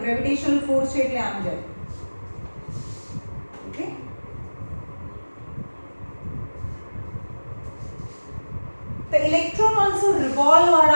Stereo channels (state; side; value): inverted; both; correlation -1.00